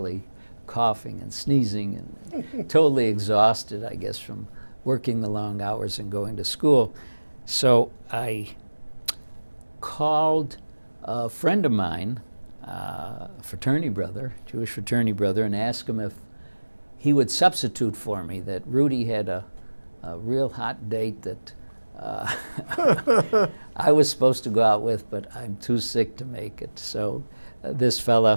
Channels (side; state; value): both; inverted; correlation -1.00